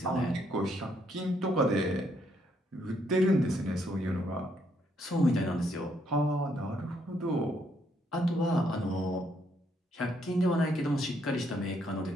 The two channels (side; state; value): both; normal; correlation 0.72